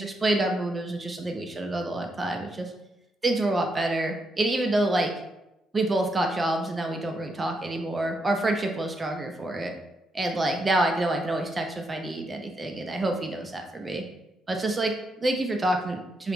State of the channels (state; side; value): normal; both; correlation 0.81